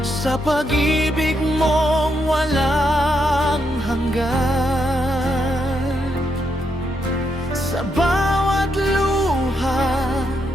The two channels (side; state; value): both; normal; correlation 0.80